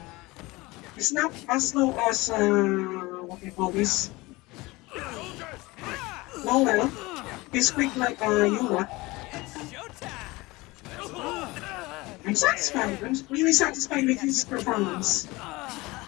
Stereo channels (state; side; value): quieter; right; 21.8 dB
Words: It's not as slow as what you call this. No, well, he's quick like Yura. I'm satisfied. I'm really satisfied with his performance.